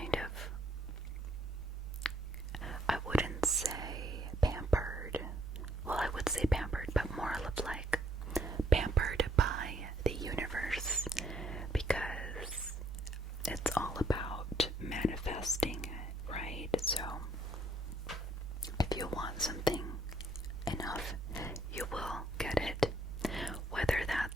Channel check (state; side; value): normal; both; correlation 0.69